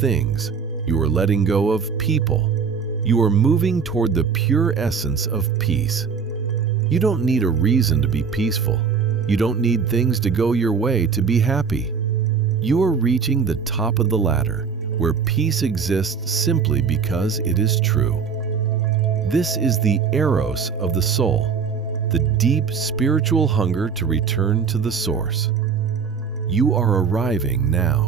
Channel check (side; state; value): left; quieter; 6.1 dB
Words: You are letting go of people. You are moving toward the pure essence of peace. You don't need a reason to be peaceful. You don't need things to go your way to be happy. You are reaching the top of the ladder, where peace exists simply because it is true. This is the eros of the soul, the deep spiritual hunger to return to the source. You are arriving